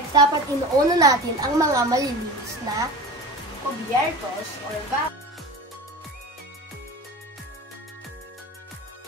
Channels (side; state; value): both; normal; correlation 0.33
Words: dapat inuuna natin ang mga malilinis na kubyertos or vacuum.